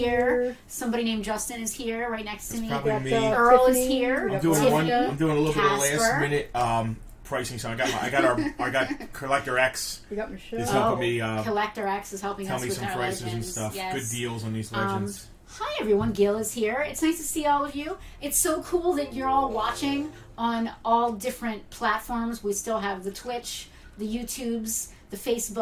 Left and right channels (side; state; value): both; identical; correlation 1.00